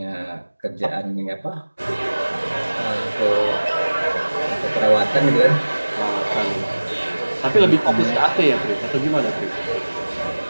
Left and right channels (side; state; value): both; inverted; correlation -1.00